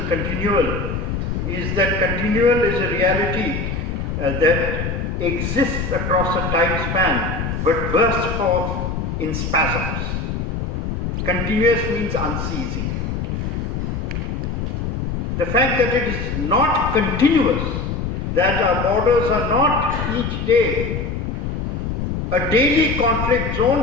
continual is that continual is a reality that exists across a time span but bursts forth in spasms. Continuous means unceasing. The fact that it is not continuous, that our borders are not each day a daily conflict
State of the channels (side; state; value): left; noise; rumble, 3 dB below the sound